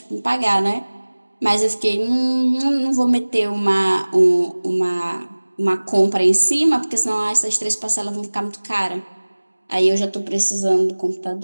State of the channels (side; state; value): both; inverted; correlation -1.00